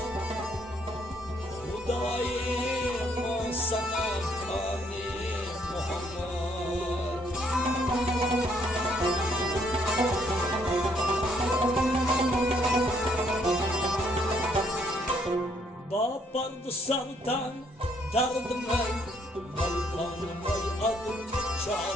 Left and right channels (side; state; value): both; normal; correlation 0.68